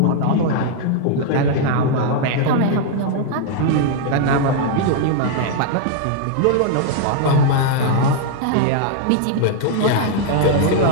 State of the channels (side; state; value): both; different; correlation -0.01